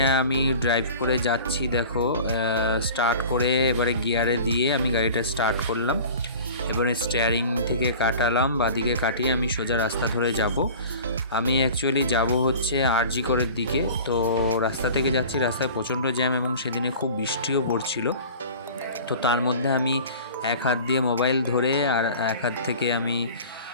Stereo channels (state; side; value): inverted; both; correlation -0.40